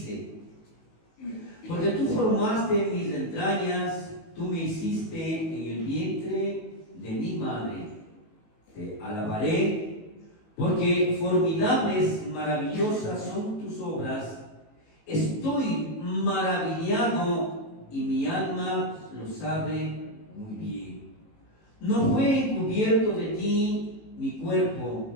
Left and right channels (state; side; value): late; right; 18 ms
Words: porque tú formaste mis entrañas, tú me hiciste en el vientre de mi madre. Te alabaré, porque formidables, maravillosas son tus obras. Estoy maravillado y mi alma lo sabe muy bien. No fue encubierto de ti mi